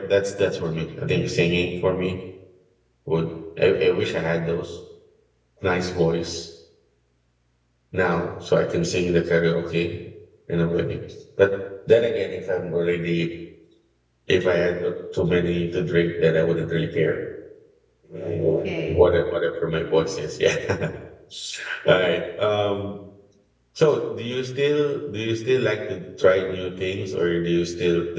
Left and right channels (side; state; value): both; identical; correlation 1.00